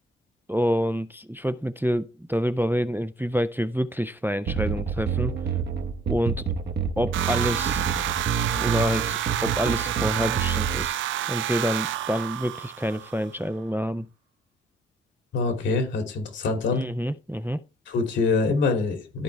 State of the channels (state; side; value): normal; both; correlation 0.57